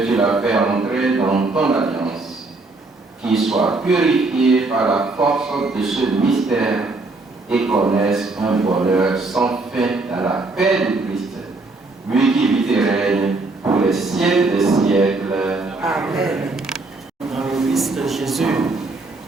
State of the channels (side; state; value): left; quieter; 3.4 dB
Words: tu l'as fait entrer dans ton alliance, qu'il soit purifié par la force de ce mystère et connaisse un bonheur sans fin dans la paix du Christ, lui qui vit et règne pour les siècles des siècles. Amen. Dans le Christ Jésus,